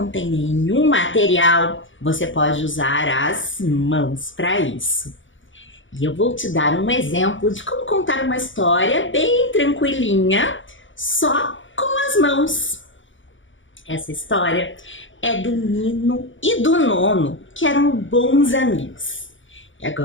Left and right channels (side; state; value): right; late; 0.56 ms